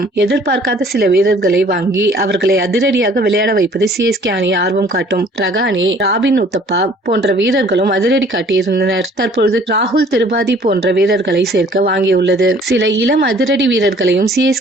எதிர்பார்க்காத சில வீரர்களை வாங்கி அவர்களை அதிரடியாக விளையாட வைப்பது சிஎஸ்கே அணி ஆர்வம் காட்டும். ரகானே, ராபின் உத்தப்பா போன்ற வீரர்களும் அதிரடி காட்டியிருந்தனர். தற்பொழுது ராகுல் திரிபாதி போன்ற வீரர்களை சேர்க்க வாங்கியுள்ளது. சில இளம் அதிரடி வீரர்களையும்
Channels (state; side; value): normal; both; correlation 0.55